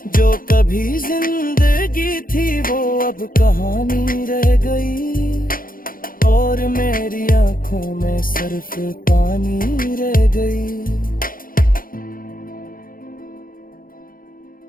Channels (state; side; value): late; right; 0.41 ms